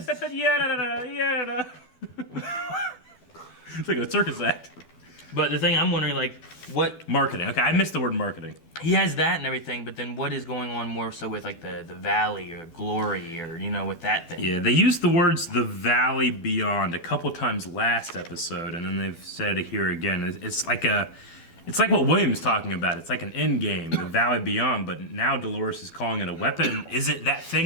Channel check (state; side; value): late; right; 12 ms